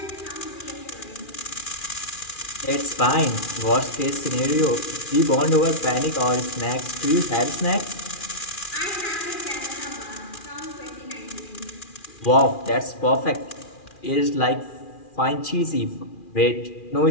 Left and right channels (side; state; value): right; late; 2.4 ms